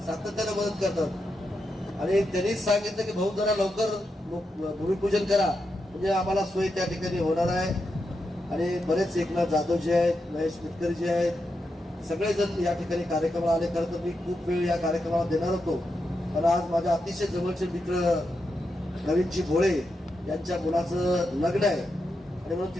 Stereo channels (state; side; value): normal; both; correlation 0.86